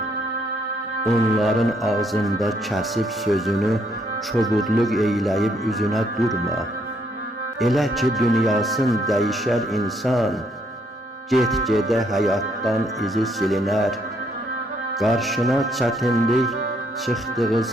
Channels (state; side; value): normal; both; correlation 0.70